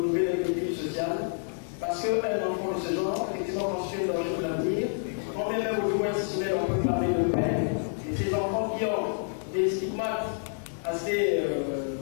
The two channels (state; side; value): silent; right; digital silence